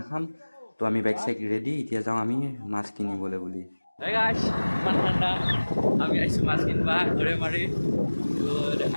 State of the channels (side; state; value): both; inverted; correlation -1.00